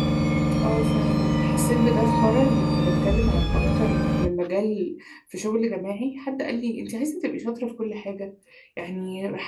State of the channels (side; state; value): both; identical; correlation 1.00